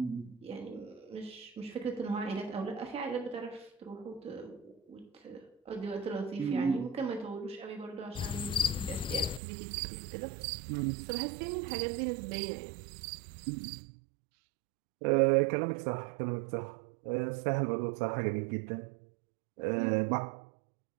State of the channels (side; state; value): left; drops out; at 9.4 s